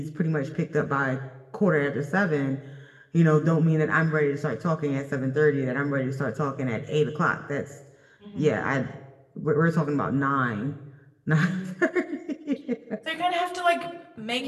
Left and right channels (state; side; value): identical; both; correlation 1.00